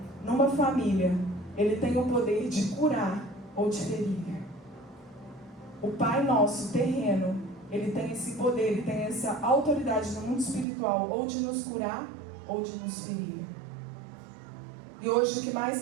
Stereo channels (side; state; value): left; drops out; at 10.7 s